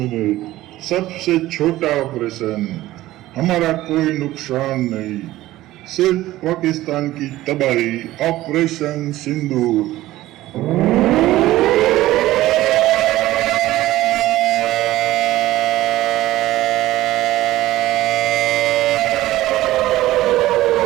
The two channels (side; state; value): left; quieter; 16.0 dB